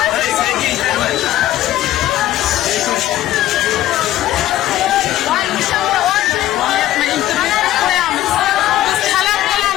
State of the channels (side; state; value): right; quieter; 13.9 dB